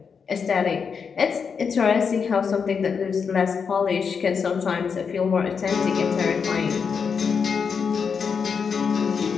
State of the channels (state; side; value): quieter; right; 6.1 dB